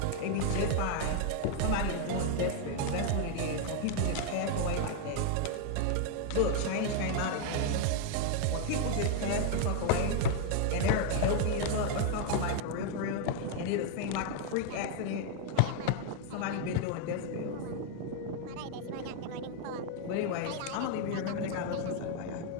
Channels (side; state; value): both; different; correlation 0.00